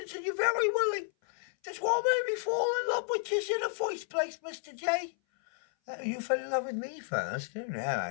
and you're very willing. That's what made me fall in love with you in the first place, Mr. J. You fell in love with me first? Oh, no,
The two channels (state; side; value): silent; right; 56 dB below the other